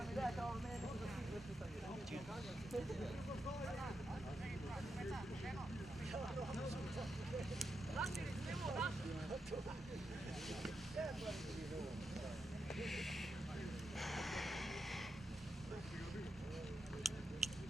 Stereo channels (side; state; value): both; normal; correlation 0.85